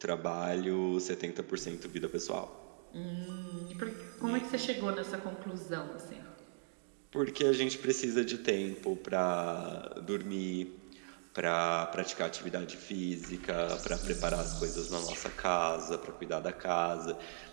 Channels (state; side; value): silent; left; digital silence